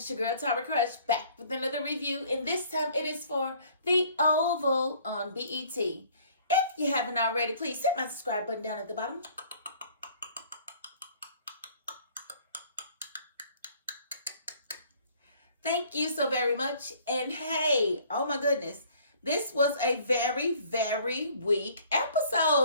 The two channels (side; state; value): both; inverted; correlation -0.55